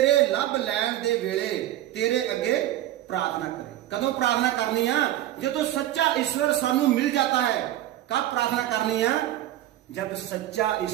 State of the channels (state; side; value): quieter; left; 13.5 dB